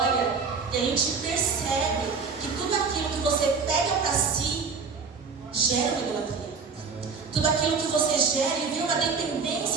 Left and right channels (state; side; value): quieter; left; 5.2 dB